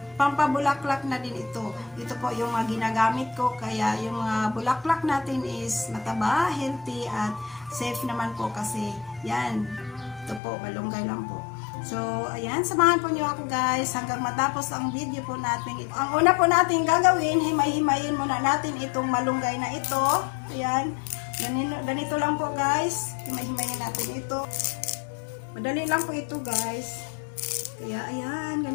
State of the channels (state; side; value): drops out; right; at 10.4 s